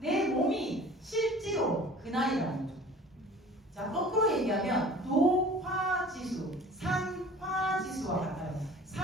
몸이 실제로 그 나이라는 거죠. 자, 거꾸로 얘기하면 노화지수, 산화지수와 같아요.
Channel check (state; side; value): normal; both; correlation 0.45